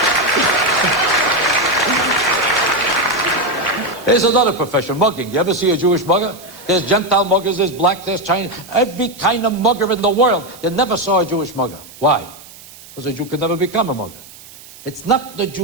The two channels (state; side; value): noise; right; hiss, 20 dB below the sound